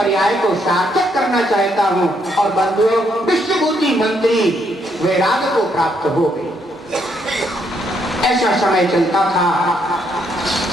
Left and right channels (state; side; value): normal; both; correlation 0.74